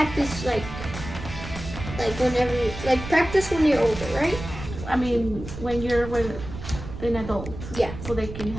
like whenever practice when you're older, right? I mean, when you're with an adult, Yeah. so they can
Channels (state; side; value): noise; right; rumble, 10 dB below the sound